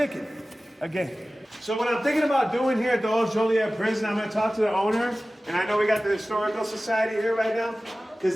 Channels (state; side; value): normal; both; correlation 0.96